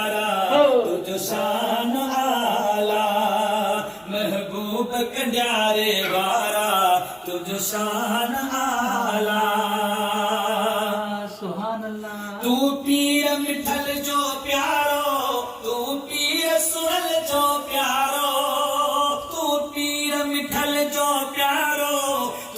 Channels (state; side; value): identical; both; correlation 1.00